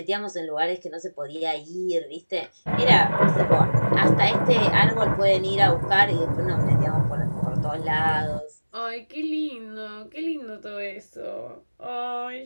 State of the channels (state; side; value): inverted; both; correlation -1.00